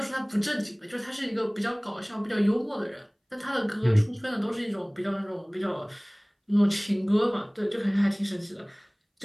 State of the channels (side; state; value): both; identical; correlation 1.00